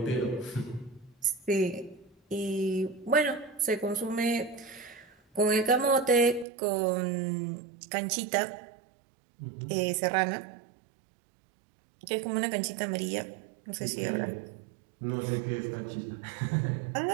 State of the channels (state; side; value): drops out; left; at 6.5 s